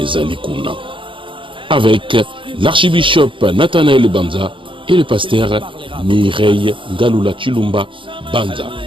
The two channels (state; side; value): late; left; 0.25 ms